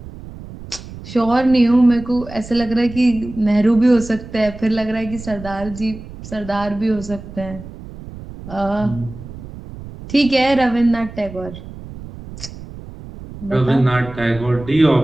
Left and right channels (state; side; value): noise; right; rumble, 14 dB below the sound